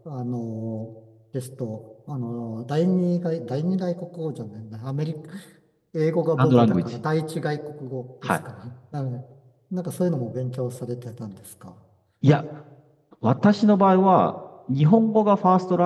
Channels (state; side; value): identical; both; correlation 1.00